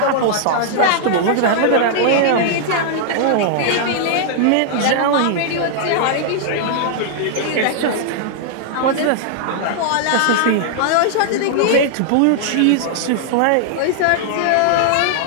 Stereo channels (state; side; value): different; both; correlation -0.01